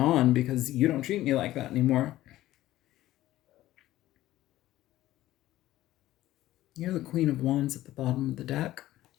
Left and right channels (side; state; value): right; quieter; 15.1 dB